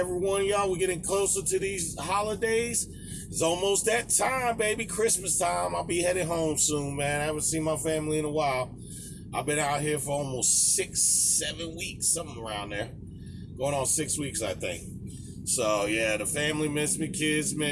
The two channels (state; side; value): identical; both; correlation 1.00